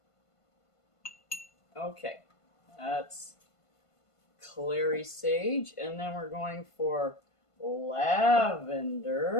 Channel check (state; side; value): late; right; 1.5 ms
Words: Okay, that's clary sage, and then we're going for